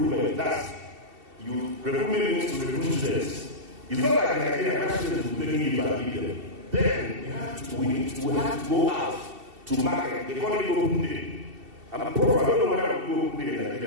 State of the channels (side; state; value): left; late; 2.7 ms